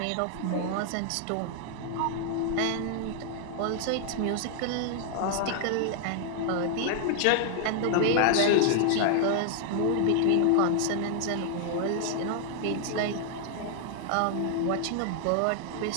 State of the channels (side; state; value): both; different; correlation 0.00